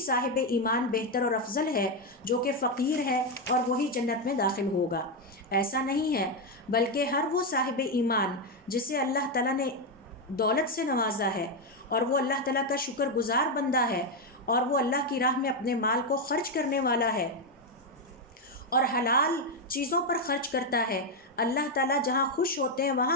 ایمان بہتر اور افضل ہے جو کہ فقیر ہے اور وہی جنت میں داخل ہوگا۔ ایسا نہیں ہے، بلکہ ہر وہ صاحب ایمان جسے اللہ تعالیٰ نے دولت سے نوازا ہے اور وہ اللہ تعالیٰ کا شکر گزار بندہ ہے اور وہ اللہ کی راہ میں اپنے مال کو خرچ کرنے والا ہے اور حلال چیزوں پر خرچ کرتا ہے، اللہ تعالیٰ جہاں خوش ہوتے ہیں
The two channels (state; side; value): normal; both; correlation 0.05